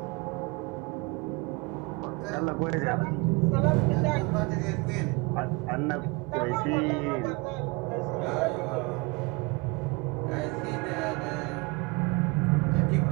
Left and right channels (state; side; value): quieter; left; 25.7 dB